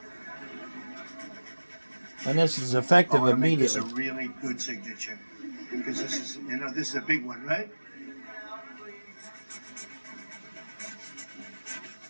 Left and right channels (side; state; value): both; inverted; correlation -1.00